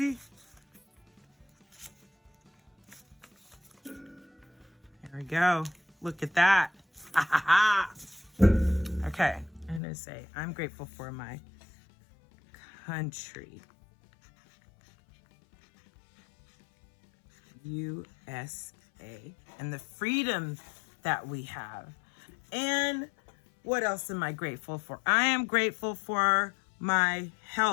There we go. Look at that. Okay, I'm gonna say, I'm grateful for my country. USA. And the freedom that we have. And what else am I grateful for? I am grateful for my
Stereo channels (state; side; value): drops out; right; at 9.8 s